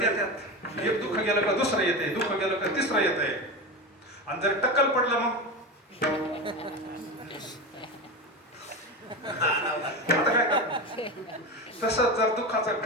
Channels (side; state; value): both; normal; correlation 0.22